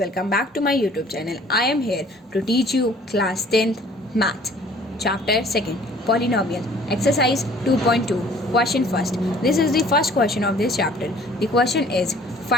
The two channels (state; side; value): normal; both; correlation 0.54